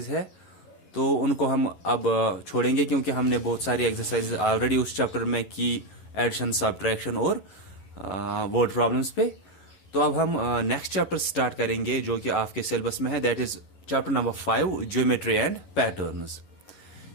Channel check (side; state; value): right; late; 11 ms